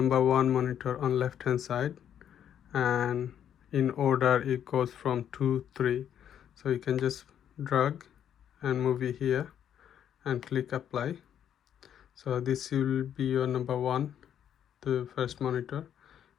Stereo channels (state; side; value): quieter; right; 9.5 dB